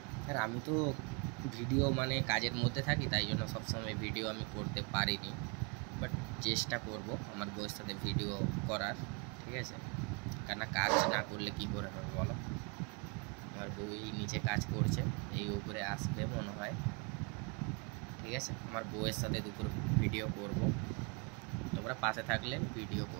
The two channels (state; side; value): quieter; left; 32.8 dB